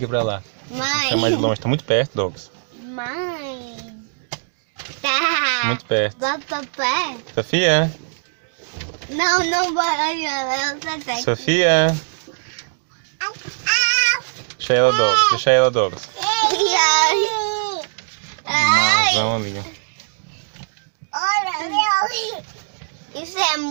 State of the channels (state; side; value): silent; left; digital silence